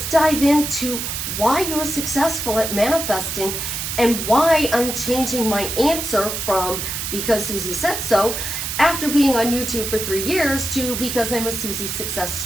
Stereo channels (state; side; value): noise; right; hiss, 4 dB below the sound